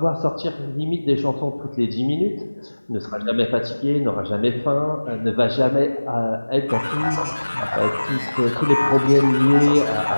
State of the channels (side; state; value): both; inverted; correlation -1.00